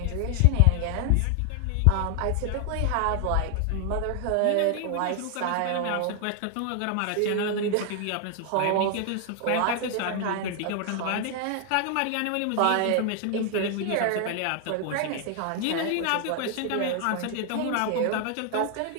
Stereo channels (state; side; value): different; both; correlation 0.00